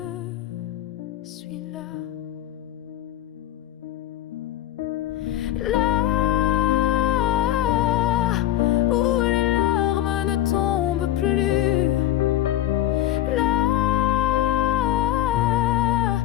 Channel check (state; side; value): quieter; right; 13.0 dB